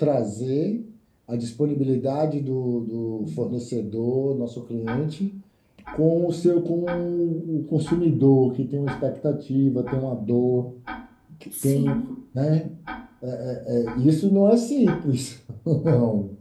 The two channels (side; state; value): both; identical; correlation 1.00